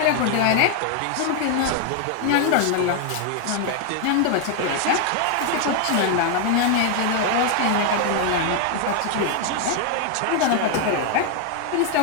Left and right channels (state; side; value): different; both; correlation 0.00